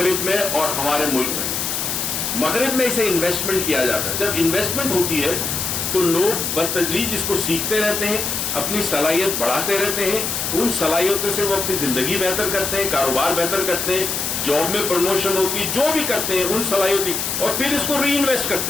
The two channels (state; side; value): noise; left; hiss, 2 dB below the sound